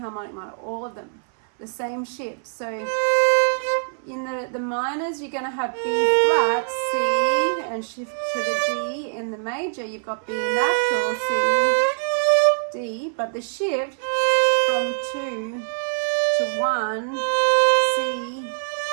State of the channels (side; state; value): left; silent; 60 dB below the other